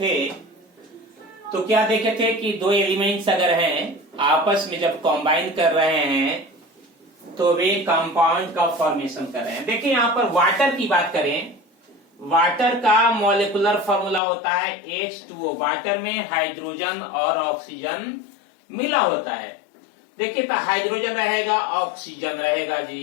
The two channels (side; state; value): right; drops out; at 14.2 s